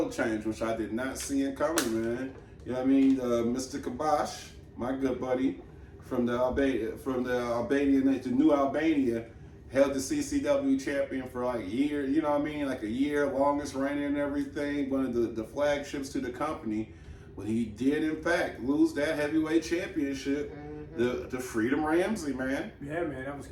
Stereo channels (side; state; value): both; identical; correlation 1.00